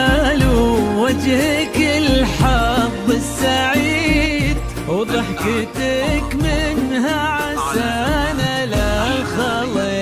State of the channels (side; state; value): both; identical; correlation 1.00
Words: ووجهك الحظ السعيد، وضحكتك منها عسانا لا